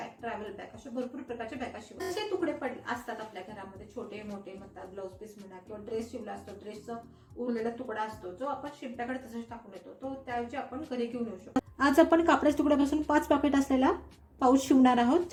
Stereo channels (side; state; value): both; identical; correlation 1.00